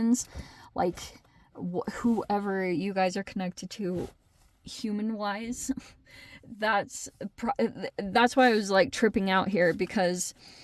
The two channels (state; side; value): identical; both; correlation 1.00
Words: like whoever you guys are connected to human-wise. That's why I was like tripping out here, because